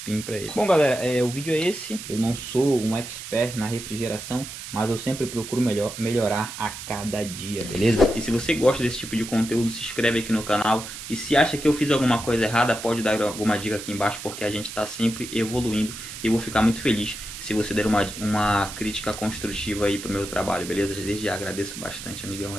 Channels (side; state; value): right; noise; hiss, 10 dB below the sound